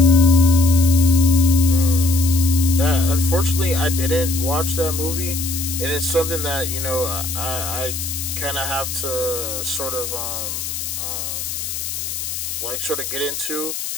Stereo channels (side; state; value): left; noise; hiss, 5 dB below the sound